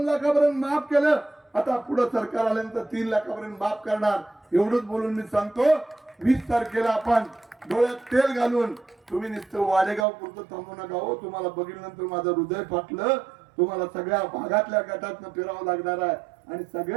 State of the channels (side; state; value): left; drops out; at 10.1 s